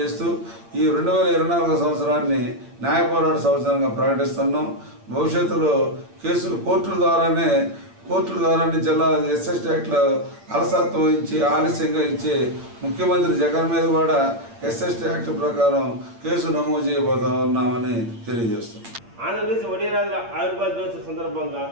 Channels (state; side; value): late; left; 8.6 ms